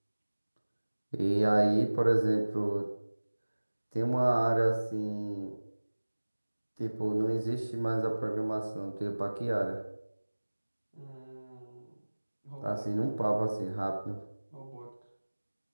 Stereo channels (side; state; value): both; inverted; correlation -1.00